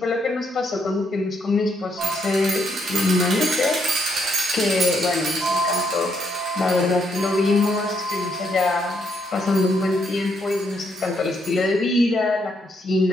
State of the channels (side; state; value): both; normal; correlation 0.75